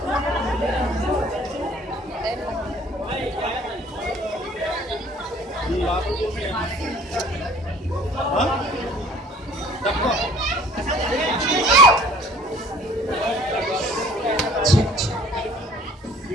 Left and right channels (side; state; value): both; normal; correlation 0.53